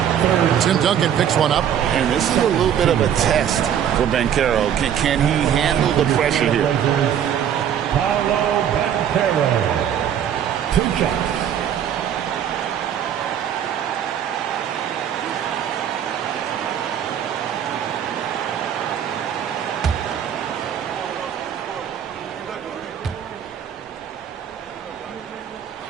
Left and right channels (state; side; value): quieter; left; 9.3 dB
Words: Tim Duncan picks one up. And this is a little bit of a test for Banchero. Can he handle the pressure here? Paolo Banchero. 2 shots.